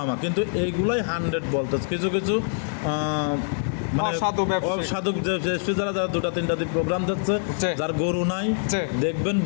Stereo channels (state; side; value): silent; right; 62 dB below the other